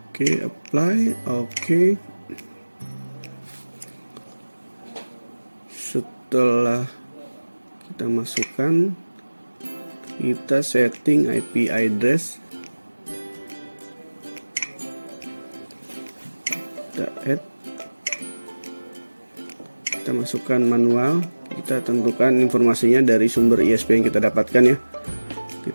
Oke, apply, oke. Setelah kita masukkan, kita setting IP address. Kita add, kita masukkan manual. Kita tentukan informasinya dari sumber ISP yang kita dapatkan ya.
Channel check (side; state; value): both; inverted; correlation -1.00